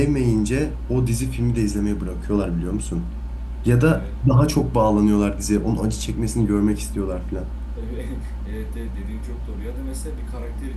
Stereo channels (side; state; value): both; identical; correlation 1.00